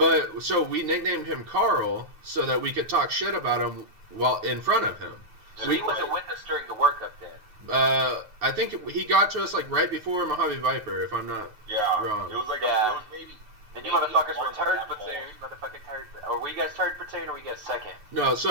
so we nicknamed him Carl so that we could talk shit about him while in front of him. So he wasn't with us during the workup then. I think he got to us like right before Mojave Viper, if I'm not wrong. It was like it was maybe. And you motherfuckers were third platoon, Or were you guys third platoon, or were you guys second? No,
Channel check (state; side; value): late; left; 9.4 ms